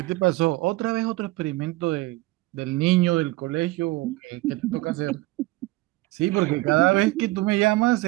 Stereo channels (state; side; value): quieter; left; 20.1 dB